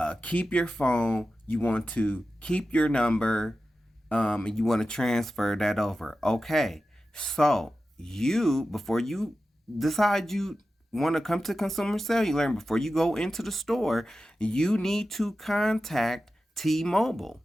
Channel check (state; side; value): normal; both; correlation 0.93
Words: keep your phone, you want to keep your number, and you want to transfer that over. Okay. So, before you decide you want to come to Consumer Cellular and before you go into the store, you need to contact T-Mobile.